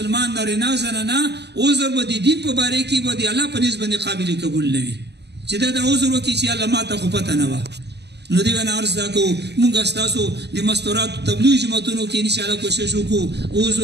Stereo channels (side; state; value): left; late; 0.49 ms